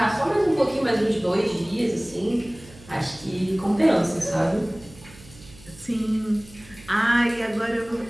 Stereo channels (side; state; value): right; noise; hum, 22 dB below the sound